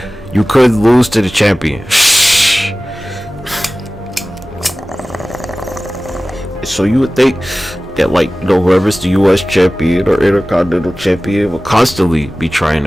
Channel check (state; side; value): normal; both; correlation 0.97